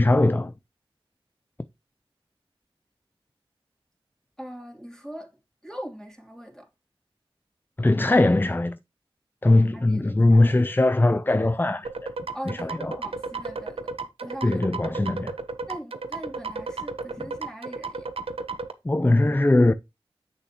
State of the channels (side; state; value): both; normal; correlation 0.94